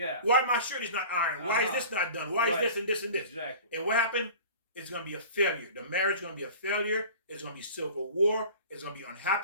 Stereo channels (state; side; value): inverted; both; correlation -0.41